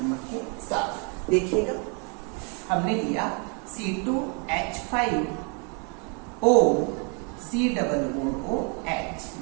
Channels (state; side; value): quieter; left; 34.8 dB